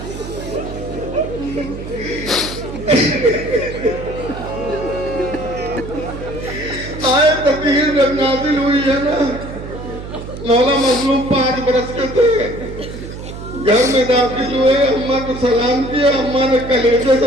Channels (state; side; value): noise; right; hum, 10 dB below the sound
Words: آئے تطہیر جب نازل ہوئی ہے نا، مولا مظلوم 5 برس کے تھے، گھر میں داخل ہوئے، اماں کو سلام کیا، اماں نے کلیجے